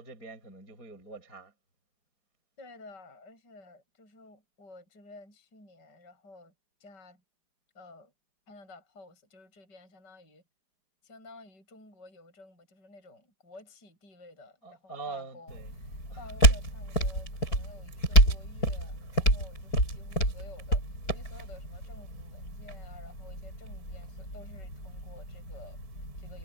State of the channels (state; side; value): late; right; 4.9 ms